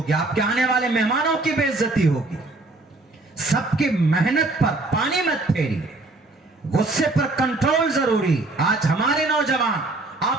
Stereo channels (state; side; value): quieter; left; 3.1 dB